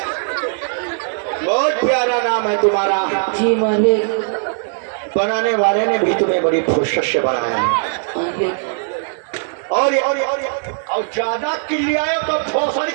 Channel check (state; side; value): silent; left; digital silence